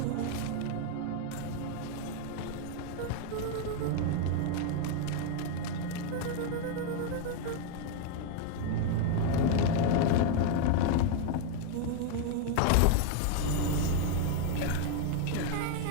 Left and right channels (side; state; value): both; different; correlation 0.01